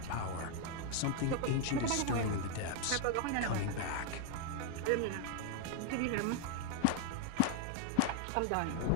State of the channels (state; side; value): different; both; correlation 0.00